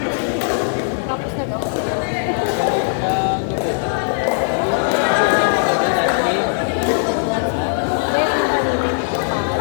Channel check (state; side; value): silent; right; digital silence